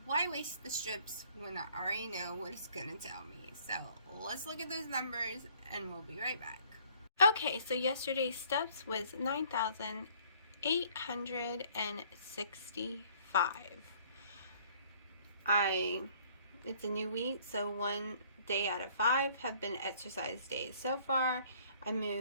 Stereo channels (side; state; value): both; inverted; correlation -0.58